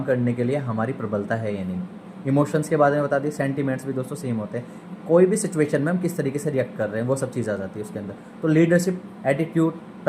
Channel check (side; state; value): both; identical; correlation 1.00